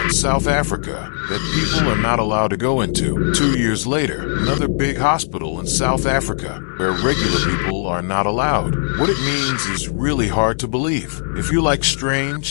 in South Africa that people are not allowed to go into. 2 years later, another big hospital in South Africa where regular people are not allowed. What it means is really hard to believe. If you like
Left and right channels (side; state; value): right; silent; digital silence